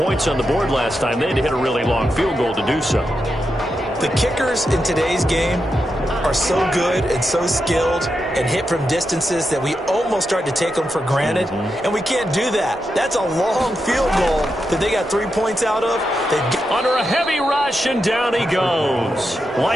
on the board last time. They had to hit a really long field goal to do so. The kickers in today's game are so good and so skilled and hit from distances that we almost start to take them for granted, and we can't do that. That's a long field goal that they got 3 points out of. Under a heavy rush, and down he goes.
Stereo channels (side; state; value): both; normal; correlation 0.87